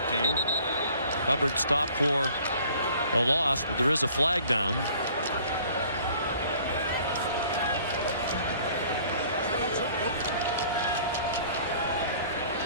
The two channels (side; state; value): both; inverted; correlation -0.54